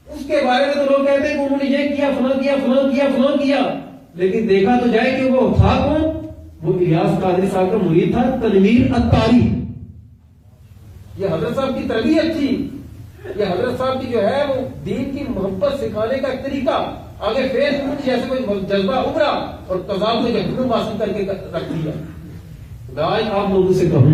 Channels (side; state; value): both; identical; correlation 1.00